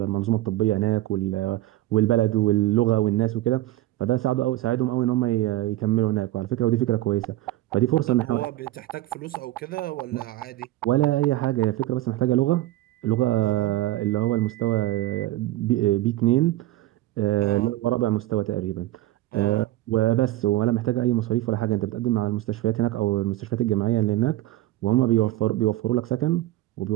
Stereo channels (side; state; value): left; quieter; 16.2 dB